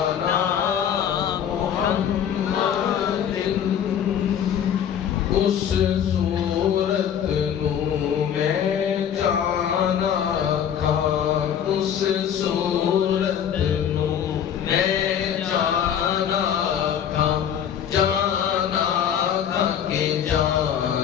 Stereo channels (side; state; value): right; quieter; 9.0 dB